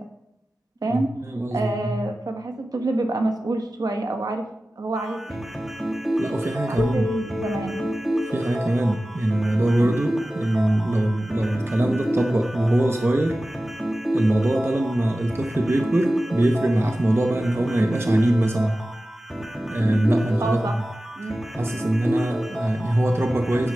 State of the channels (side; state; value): both; normal; correlation 0.95